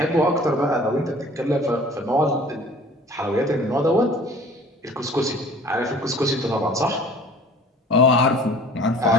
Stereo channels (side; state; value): both; normal; correlation 0.48